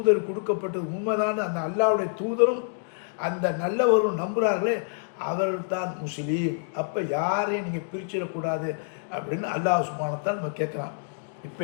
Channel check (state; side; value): silent; right; digital silence